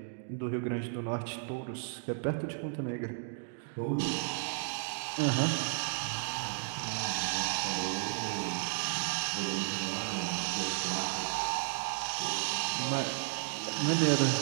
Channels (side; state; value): left; silent; digital silence